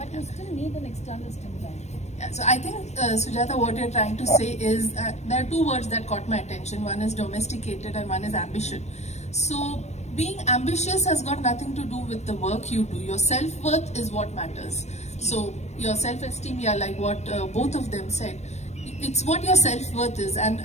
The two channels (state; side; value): late; right; 0.32 ms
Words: you still need an external stimuli. Yeah, so I think, Sujata, what you're trying to say is there are two words that caught my attention. One is domesticated and one is ambition. So being ambitious has got nothing to do with the work you do. Your self-worth is what matters. So your self-esteem, yeah, like what both of them said, it's what your self-worth is. And